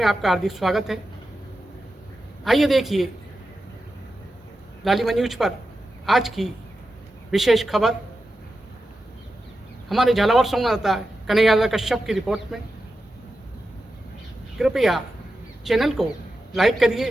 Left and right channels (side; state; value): both; normal; correlation 0.91